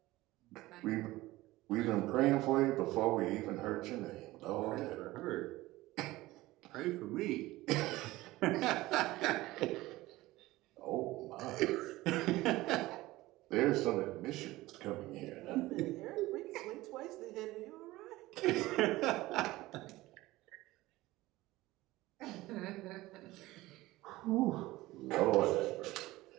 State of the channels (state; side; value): quieter; left; 18.3 dB